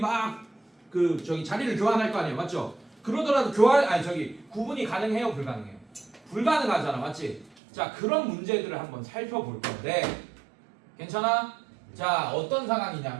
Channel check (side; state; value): left; drops out; at 7.6 s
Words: 자리를 교환할 거 아니에요. 맞죠? 그러더라도 구분이 가능해요, 불가능해요? 불가능하잖아. 맞지? 자, 그런 문제들을 한번 살펴볼 건데 괜찮아? 자, 어떤